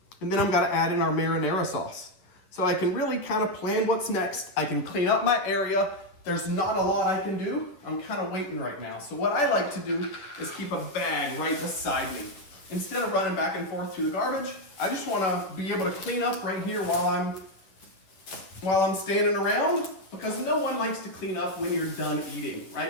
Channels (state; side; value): late; right; 10 ms